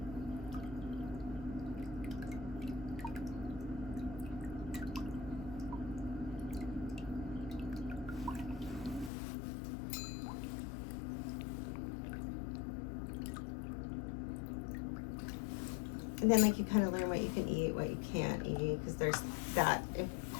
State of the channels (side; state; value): right; drops out; at 9.1 s